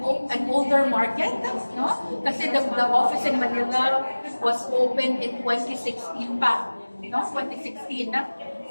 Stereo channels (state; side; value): inverted; both; correlation -1.00